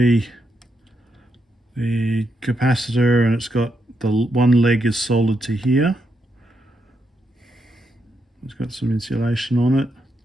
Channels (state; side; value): normal; both; correlation 0.81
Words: the capacitor, and it's got the one leg is soldered to here. It's got some insulation on it.